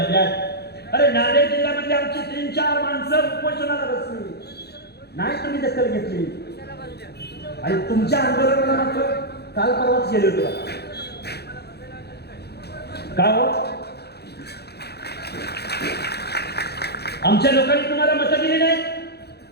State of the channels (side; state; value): right; late; 0.48 ms